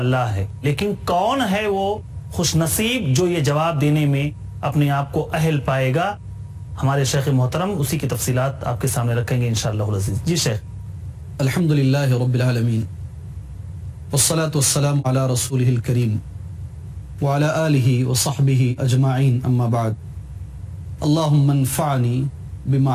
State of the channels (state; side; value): identical; both; correlation 1.00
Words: ہے، لیکن کون ہے وہ خوش نصیب جو یہ جواب دینے میں اپنے آپ کو اہل پائے گا؟ ہمارے شیخ محترم اسی کی تفصیلات آپ کے سامنے رکھیں گے انشاءاللہ العزیز. جی شیخ. الحمدللہ رب العالمین والصلاة والسلام علی رسولہ الکریم وعلی آلہ وصحبہ اجمعین، اما بعد. اللہم انفعنی